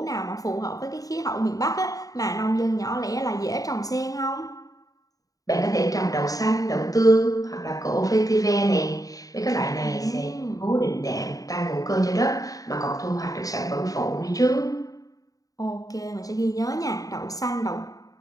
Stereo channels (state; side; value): late; right; 0.17 ms